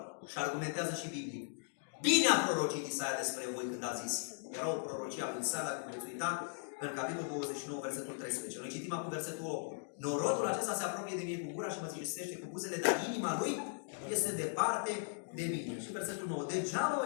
și argumentează și biblic. Bine a prorocit Isaia despre voi când a zis. Era o prorocie a lui Isaia, dacă veți uita, în capitolul 29, versetul 13. Noi citim acum versetul 8. Norodul acesta se apropie de mine cu gura și mă cinstește cu buzele, dar inima lui este departe de mine. Și versetul 9. Degeaba mă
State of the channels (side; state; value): right; silent; digital silence